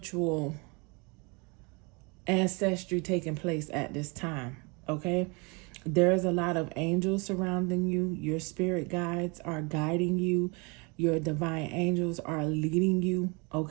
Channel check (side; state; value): left; quieter; 30.0 dB